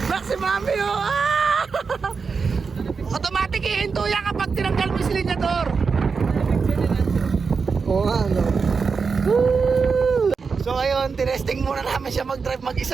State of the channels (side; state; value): left; quieter; 5.2 dB